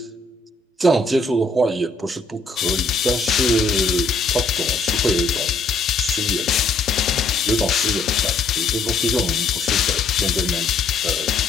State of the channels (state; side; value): quieter; right; 3.6 dB